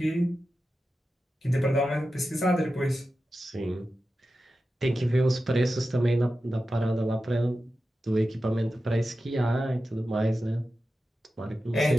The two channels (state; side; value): normal; both; correlation 0.92